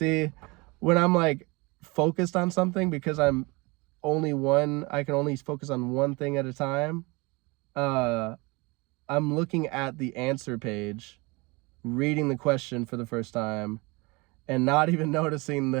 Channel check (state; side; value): quieter; left; 26.0 dB